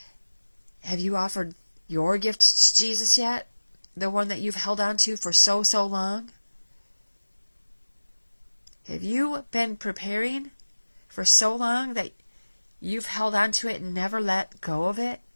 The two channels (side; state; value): both; inverted; correlation -1.00